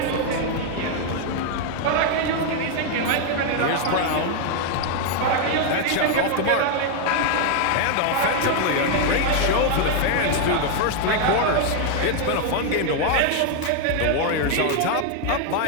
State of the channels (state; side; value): different; both; correlation 0.00